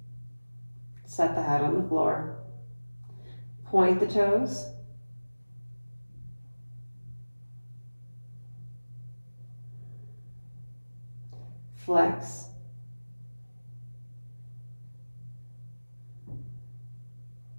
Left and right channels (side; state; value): both; inverted; correlation -1.00